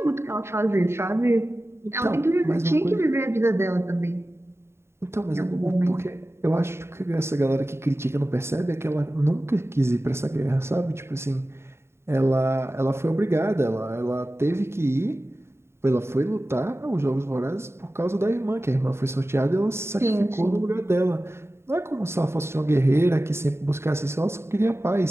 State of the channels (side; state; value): left; late; 0.12 ms